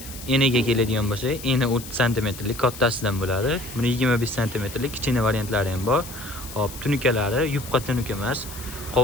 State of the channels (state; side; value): noise; left; hiss, 13 dB below the sound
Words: eniga keladigan bo'lsa, eni 30 sm lik kattasidan bo'ladi. Buni 25 sm lik kichkina variantlari ham bor. Hop, tunukalari yupqa tunuka emas,